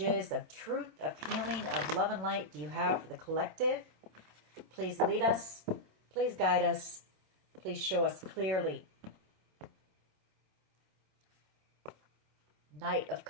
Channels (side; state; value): left; late; 27 ms